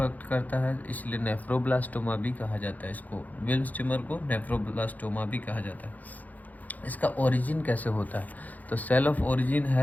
करता है, इसलिए नेफ्रोब्लास्टोमा भी कहा जाता है इसको। विल्म्स ट्यूमर को नेफ्रोब्लास्टोमा भी कहा जाता है। इसका ओरिजिन कैसे होता है, तो सेल ऑफ ओरिजिन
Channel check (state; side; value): late; right; 0.080 ms